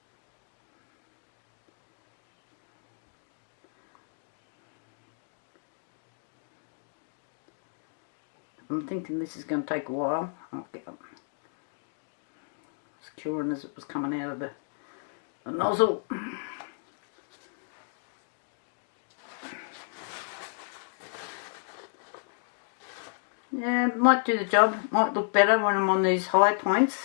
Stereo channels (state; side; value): silent; right; digital silence